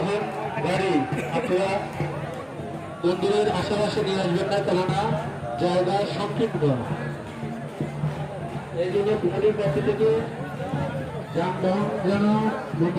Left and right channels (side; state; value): both; identical; correlation 1.00